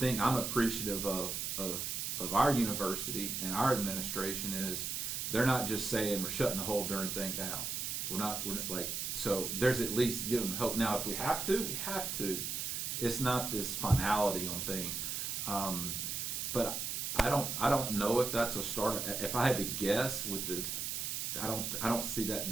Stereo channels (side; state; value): right; noise; hiss, 2 dB below the sound